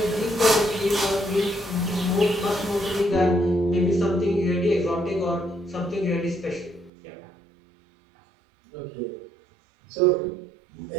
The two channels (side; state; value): left; drops out; at 6.9 s